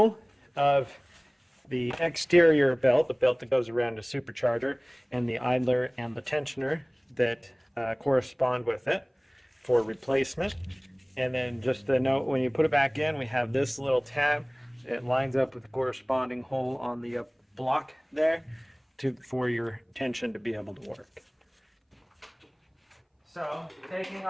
of the exterior belt, the belt that goes around the supercharger, and the idler and the tensioner that correspond with it for replacement. And then just a note, when you put it back in, we have this little tab. It lines up with the corresponding hole on the block there for your tension to be able to work. So taking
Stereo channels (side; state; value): both; identical; correlation 1.00